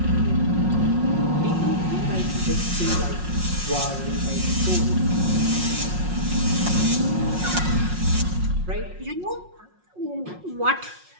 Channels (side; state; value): left; late; 5.5 ms